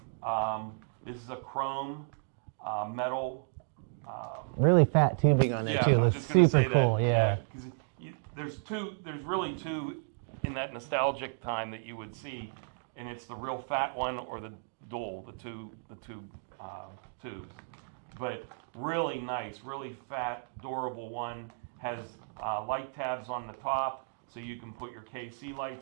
This is a chrome metal. Really fat tubing on there Yeah, too. I was Looks just gonna super say cool. that. Yeah. 'Cause there's really two in that nostalgic time that you would see, and it's the real fat one or the dual, the two tubes. But really nice, really fat, durable one. Has light tabs on the top, so you can put your KC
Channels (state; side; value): silent; left; digital silence